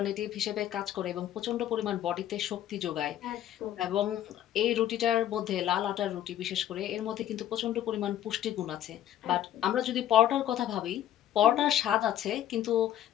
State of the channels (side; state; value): right; quieter; 11.8 dB